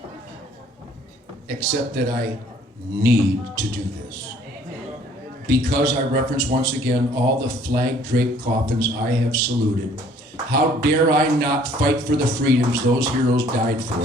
Except that I need to do this. Because I reference once again all the flag-draped coffins I have saluted. How dare I not fight for the freedoms those heroes died for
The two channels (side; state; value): both; normal; correlation 0.58